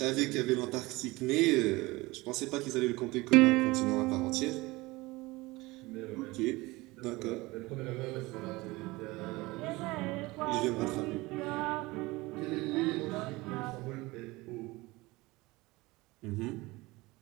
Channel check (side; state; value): left; quieter; 21.7 dB